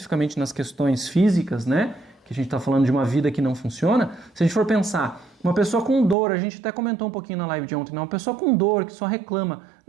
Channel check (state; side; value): drops out; left; at 6.2 s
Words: nas questões físicas, né? Que a gente está falando de uma vida que não funciona. Se a gente for pensar, uma pessoa com dor, a gente até comentou um pouquinho na live de ontem, né? Uma pessoa com dor, que só reclama,